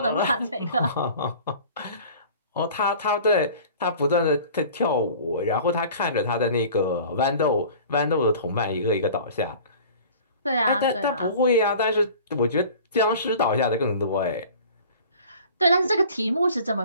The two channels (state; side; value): inverted; both; correlation -0.44